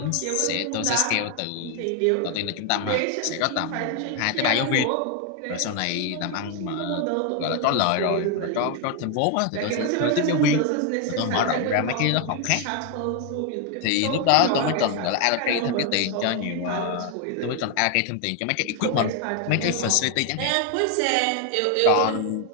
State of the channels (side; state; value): both; different; correlation 0.01